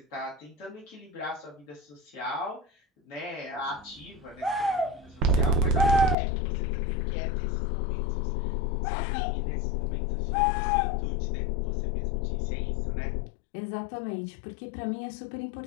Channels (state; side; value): drops out; right; at 6.2 s